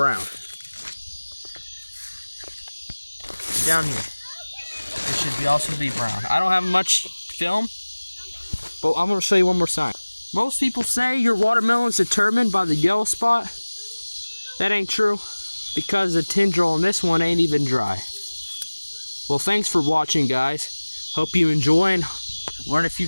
Down here, it should also be brown. I don't have much film, but I'm going to show you one more sign. Most people say your watermelon's determined by the yellow spot. That ain't true, because the tendril on this one ain't even dry. Well, thanks for watching, guys. Hope you enjoy and learn a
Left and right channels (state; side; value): inverted; both; correlation -1.00